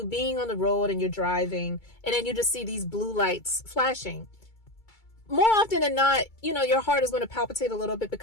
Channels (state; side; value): late; right; 2.3 ms